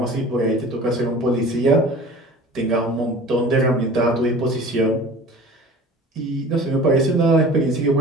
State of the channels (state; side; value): normal; both; correlation 0.42